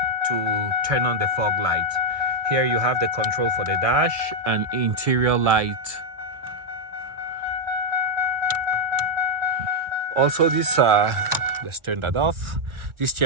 to turn on the fog light. Here you have the control for the dash and interior light. Also this, let's turn that off. This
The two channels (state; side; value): late; left; 1.7 ms